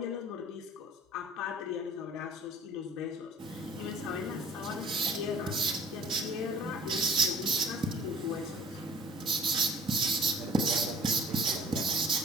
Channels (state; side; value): normal; both; correlation 0.50